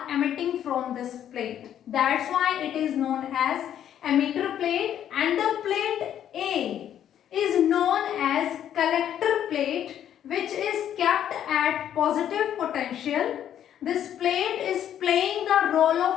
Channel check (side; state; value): right; quieter; 10.3 dB